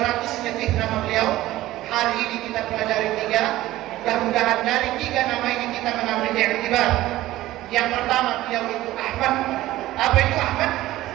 lebih nama beliau. Hari ini kita pelajari 3. Mudah-mudahan dari 3 nama ini kita mengambil i'tibar. Yang pertama, beliau itu Ahmad. Apa itu Ahmad?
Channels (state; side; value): quieter; left; 15.9 dB